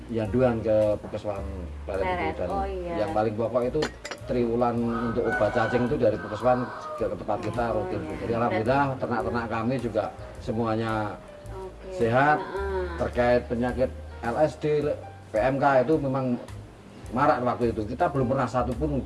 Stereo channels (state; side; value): identical; both; correlation 1.00